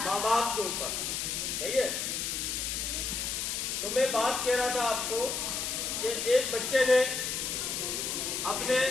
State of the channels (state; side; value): noise; left; hiss, 2 dB below the sound